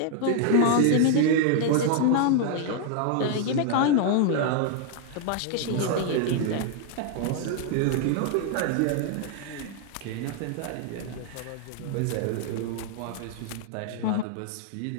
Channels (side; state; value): both; different; correlation 0.00